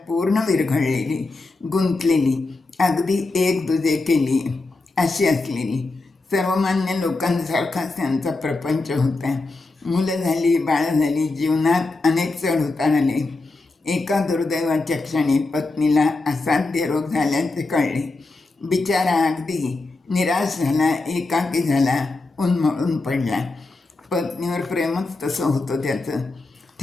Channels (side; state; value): right; quieter; 3.3 dB